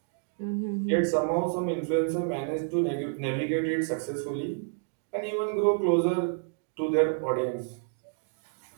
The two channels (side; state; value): left; silent; 58 dB below the other